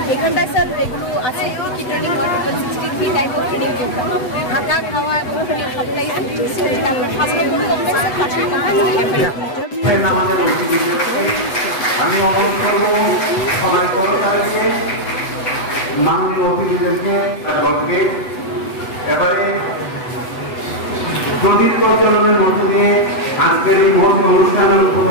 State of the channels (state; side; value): late; right; 8.0 ms